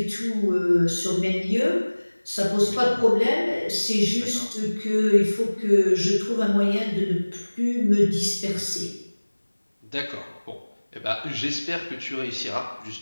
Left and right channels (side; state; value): both; inverted; correlation -1.00